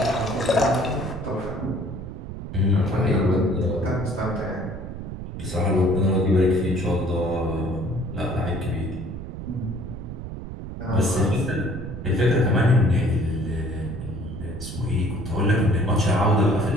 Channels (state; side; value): noise; right; rumble, 9 dB below the sound